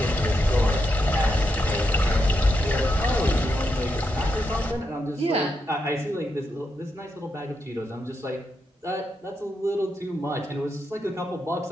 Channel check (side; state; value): both; normal; correlation 0.83